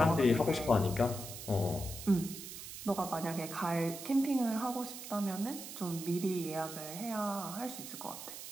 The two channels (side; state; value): right; noise; hiss, 10 dB below the sound